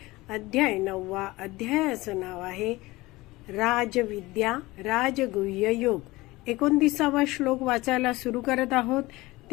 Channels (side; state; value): right; quieter; 20.3 dB